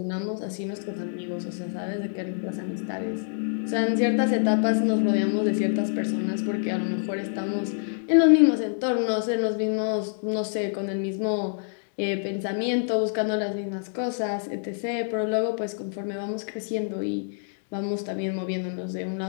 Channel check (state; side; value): silent; right; digital silence